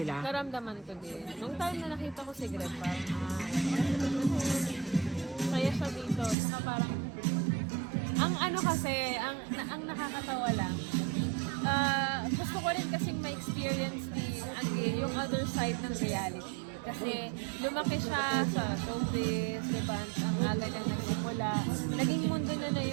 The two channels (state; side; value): drops out; left; at 6.4 s